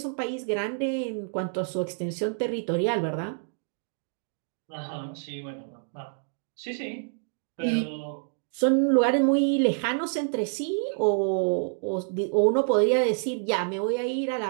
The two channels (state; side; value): silent; left; digital silence